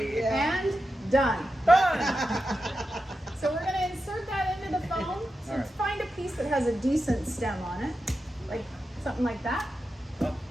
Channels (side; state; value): both; normal; correlation 0.90